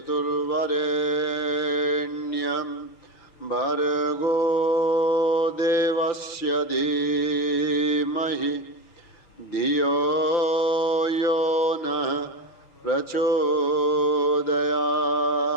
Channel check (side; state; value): right; late; 6.4 ms